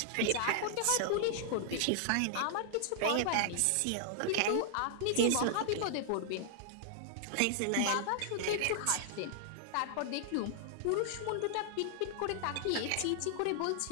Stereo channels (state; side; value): different; both; correlation -0.01